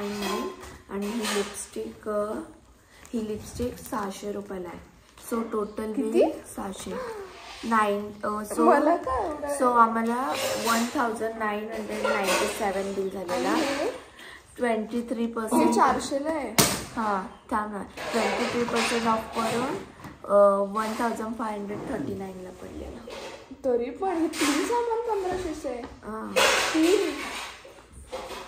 आणि ही लिपस्टिक 600 रुपयाला आहे. सो टोटल किती? 600. 9 सो आम्हाला 1997 बिल झालेला. 23% 400ला आहे. हां थांब ना. 23% ऑफ करून 1539ला पडलेला. तरी पण हे 3 सामान 1500 आहे. हां 3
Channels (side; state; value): both; identical; correlation 1.00